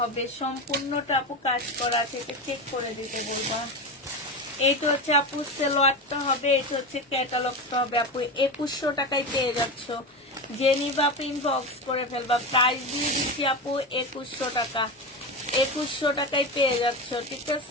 হবে, সম্পূর্ণটা আপু কাজ করা আছে, এটা চেক করে দিতে বলবা। এইটা হচ্ছে আপু সেলোয়ারটা হবে, এটা হচ্ছে ক্যাটালগটা হবে আপু। 2100 টাকায় পেয়ে যাচ্ছ, যে নিবা আপু ইনবক্স করে ফেলবা। প্রাইস দিয়ে দিচ্ছি আপু 2100 টাকা। 2100 টাকায় পেয়ে যাচ্ছ, ঠিক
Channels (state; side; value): normal; both; correlation 0.21